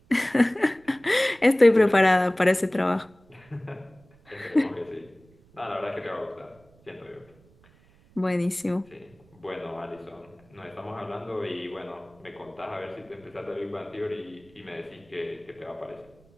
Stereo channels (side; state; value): right; noise; rumble, 29 dB below the sound